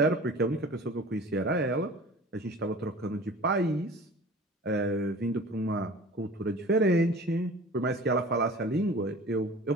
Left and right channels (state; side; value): normal; both; correlation 0.42